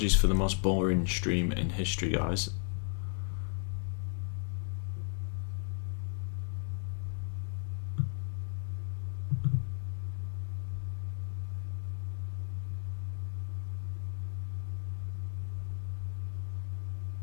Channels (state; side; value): silent; right; 54 dB below the other